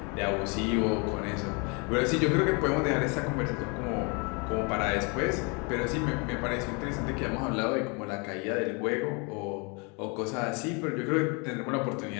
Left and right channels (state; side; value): quieter; right; 32.1 dB